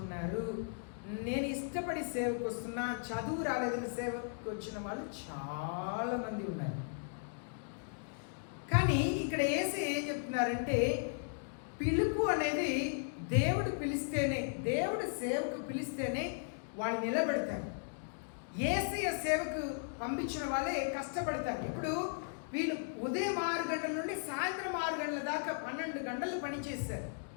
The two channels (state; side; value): silent; right; digital silence